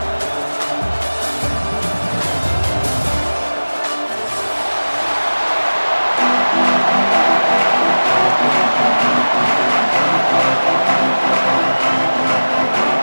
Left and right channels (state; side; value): inverted; both; correlation -1.00